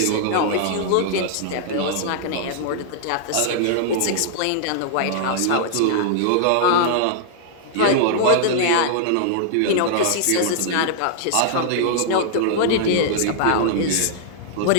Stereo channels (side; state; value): both; different; correlation -0.01